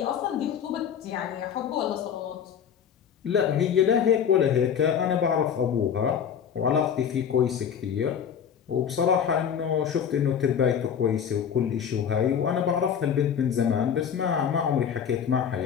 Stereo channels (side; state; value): right; quieter; 8.0 dB